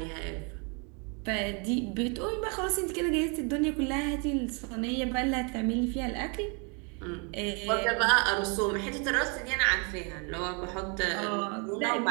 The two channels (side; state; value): left; quieter; 34.5 dB